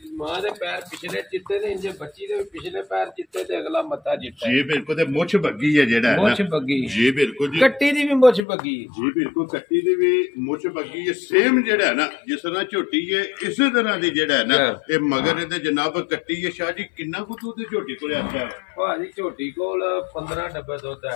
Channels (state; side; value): drops out; right; at 8.5 s